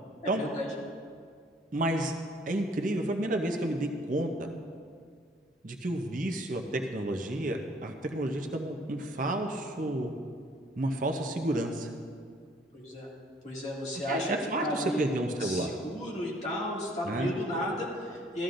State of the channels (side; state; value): both; normal; correlation 0.60